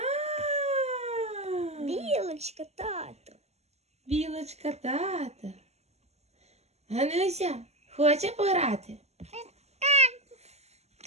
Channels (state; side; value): late; left; 0.31 ms